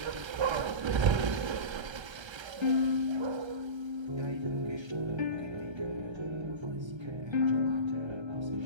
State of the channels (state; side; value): late; left; 1.3 ms